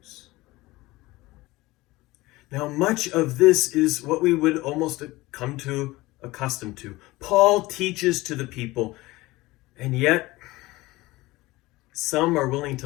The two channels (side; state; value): right; quieter; 19.8 dB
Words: Now, much of this is what we would almost come to accustomed to. Paul teaches to the people, and yet some are willing